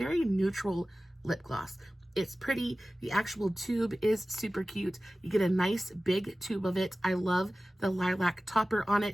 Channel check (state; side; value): normal; both; correlation 0.96